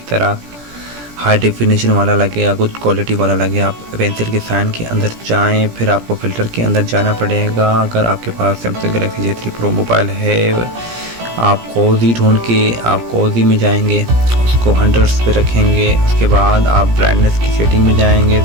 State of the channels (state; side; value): late; left; 17 ms